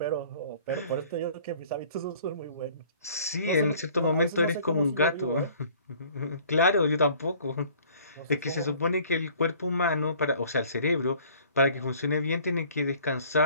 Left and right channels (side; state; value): both; inverted; correlation -0.53